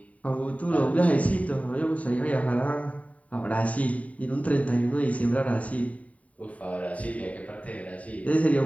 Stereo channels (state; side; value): late; right; 0.068 ms